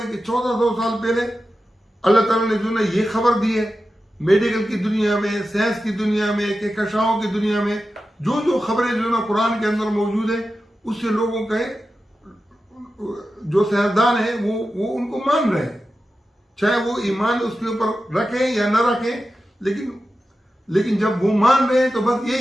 हैं कि 1400 साल पहले अल्लाह ताला ने जो ना ये खबर दी है, मेडिकल की दुनिया में, साइंस की दुनिया में, कहकशाओं की दुनिया में जो जो खबरें जो ना कुरान के अंदर मौजूद है, उससे लोगों के जो साइंसदान है वो उनको मान रहे हैं, चाहे वो ईमान उसके ऊपर रखें या न रखें। लेकिन जब वो मान रहे हैं तो बस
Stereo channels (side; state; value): both; normal; correlation 0.92